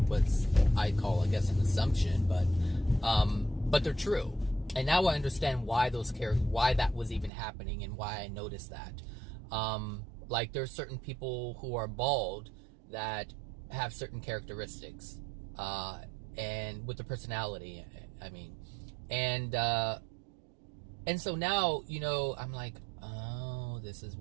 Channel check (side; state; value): left; drops out; at 7.3 s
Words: was I call, I guess, an assumption, but they're true. And now I understand why why that was even happening and why I noticed that. Like there's certain people who are bald that have certain characteristics, and with the personality, I mean, and so now, you know, I'm like, oh, this is